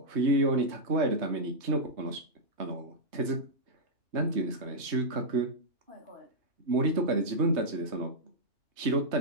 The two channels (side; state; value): left; late; 3.2 ms